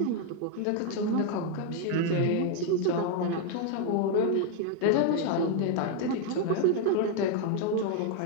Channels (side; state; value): both; different; correlation 0.00